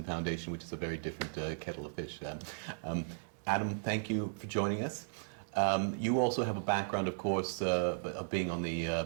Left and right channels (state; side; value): silent; left; digital silence